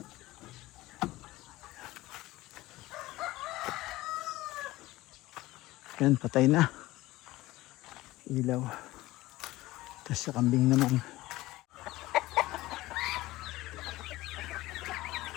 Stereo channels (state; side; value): quieter; right; 18.1 dB